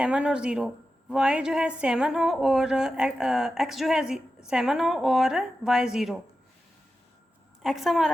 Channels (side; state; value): both; normal; correlation 0.91